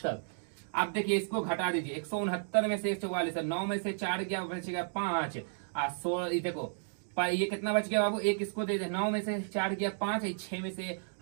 तक। आप देखिए इसको घटा दीजिए 169 में से 144, 9 में से 4 गया बचेगा 5 और 16। देखो ये कितना बच गया बाबू, एक इसको दे दे, 9 में से 4 गया 5, 6 में से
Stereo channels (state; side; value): silent; left; digital silence